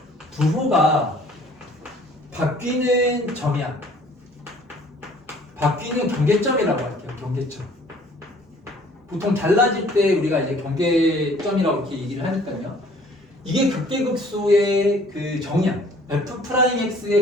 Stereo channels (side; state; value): both; normal; correlation 0.56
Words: 부호가 바뀌는 점이야. 바뀌는 경계점이라고 할게요. 경계점. 보통 달라질 때 우리가 이제 경계점이라고 이렇게 얘기를 하니까요. 이게 극대극소의 그 정의야.